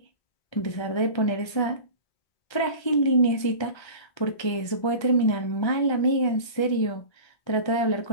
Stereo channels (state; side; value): late; right; 1.3 ms